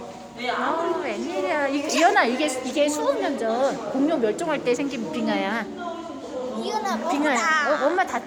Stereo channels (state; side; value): identical; both; correlation 1.00